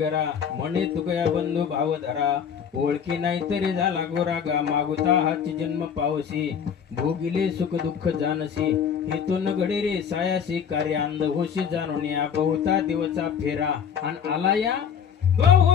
म्हणे तुकया बंधू भाव धरा ओळखी नाही तरी झाला गोरा गा मागुता हाची जन्म पावसी भोगिले सुख दुःख जानसी हेतून घडी रे सायासी कार्य अंध होशी जाणून या बहुता दिवसा फेरा आणि आला या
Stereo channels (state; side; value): quieter; right; 7.5 dB